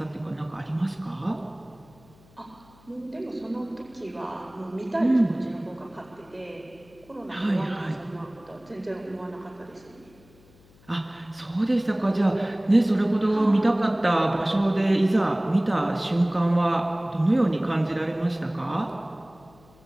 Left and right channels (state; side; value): noise; left; hum, 28 dB below the sound